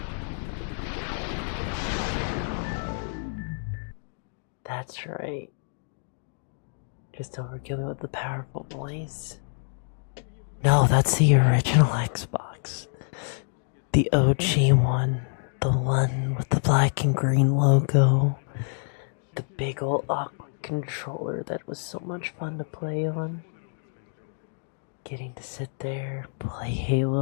That's right. Just overkill me with the powerful voice. No, that's the original Xbox. The OG one. The one with the black and green logo. The big old awkward controller that was so much fun to play on. Getting to sit there, play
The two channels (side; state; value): right; silent; digital silence